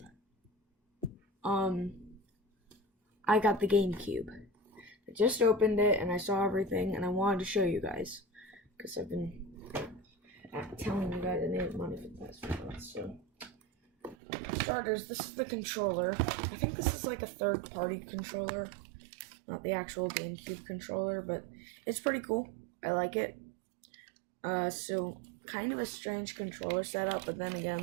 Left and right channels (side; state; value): left; drops out; at 14.2 s